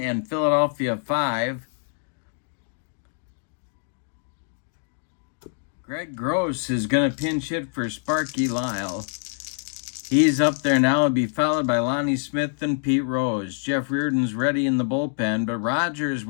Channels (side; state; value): right; silent; digital silence